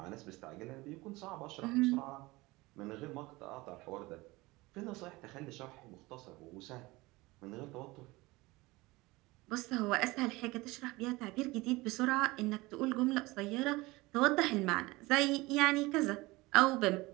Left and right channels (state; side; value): quieter; left; 21.5 dB